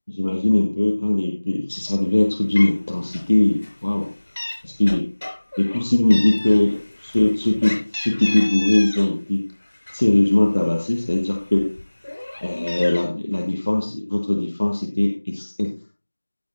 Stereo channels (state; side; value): inverted; both; correlation -1.00